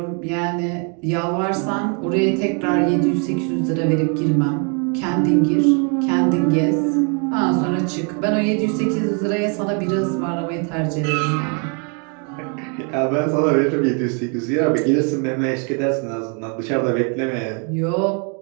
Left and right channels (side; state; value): left; quieter; 37.8 dB